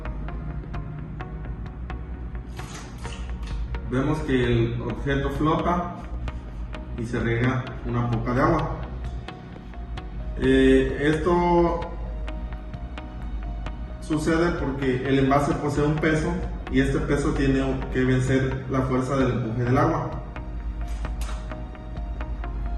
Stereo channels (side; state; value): both; identical; correlation 1.00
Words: Vemos que el objeto flota y se riega una poca de agua. Esto sucede porque el envase posee un peso y este peso tiene que vencer la fuerza del empuje del agua.